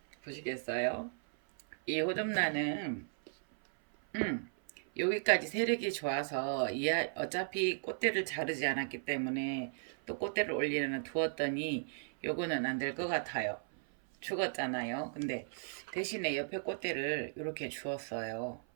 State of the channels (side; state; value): left; silent; 54 dB below the other